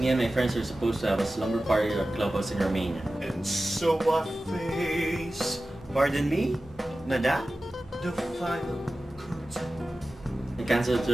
and my friends are supposed to have a slumber party at a clubhouse in Romania. And so I face, pardon me, Madame, the final curtain. I canceled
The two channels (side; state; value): both; normal; correlation 0.95